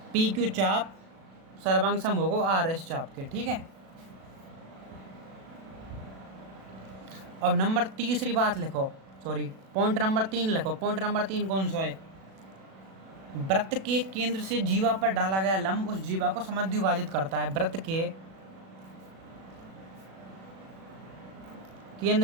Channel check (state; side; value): late; left; 37 ms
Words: पी क्यू चाप सर्वांग सम होगा आर एस चाप के, ठीक है। अब नंबर तीसरी बात लिखो, सॉरी पॉइंट नंबर 3 लिखो। पॉइंट नंबर 3 कौन सा है? वृत्त के केंद्र से जीवा पर डाला गया लंब उस जीवा को समद्विभाजित करता है। वृत्त के